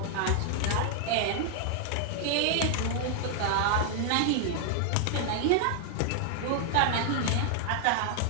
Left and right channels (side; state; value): both; different; correlation 0.00